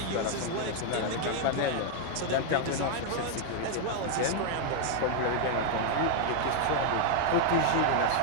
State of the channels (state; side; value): different; both; correlation 0.00